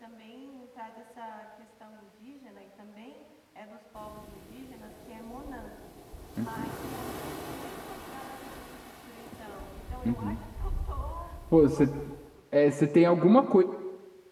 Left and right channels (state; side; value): identical; both; correlation 1.00